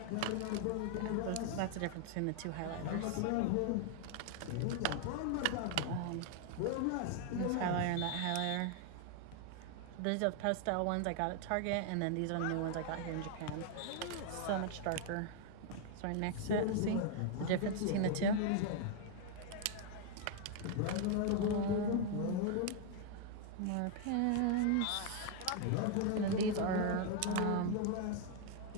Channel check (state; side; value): different; both; correlation 0.00